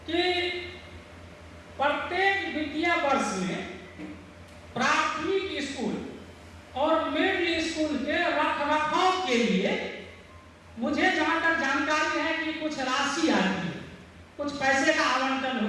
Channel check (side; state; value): both; identical; correlation 1.00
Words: कि प्रत्येक वित्तीय वर्ष में प्राथमिक स्कूल और मिडिल स्कूल के रखरखाव के लिए मुझे जहां तक जानकारी है कि कुछ राशि आती है, कुछ पैसे का आवंटन